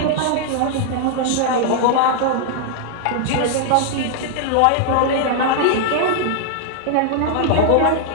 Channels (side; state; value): both; different; correlation -0.01